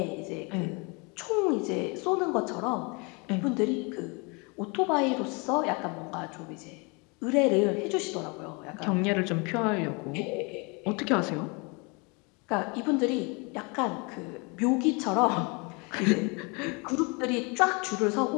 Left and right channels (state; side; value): quieter; right; 30.2 dB